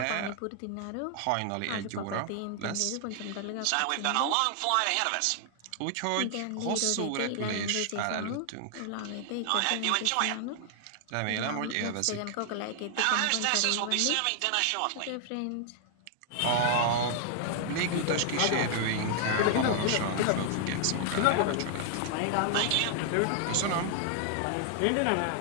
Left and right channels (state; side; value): different; both; correlation 0.00